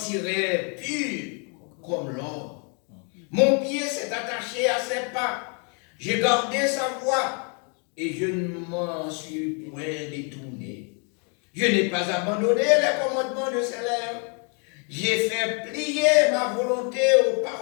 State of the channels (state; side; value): quieter; right; 38.1 dB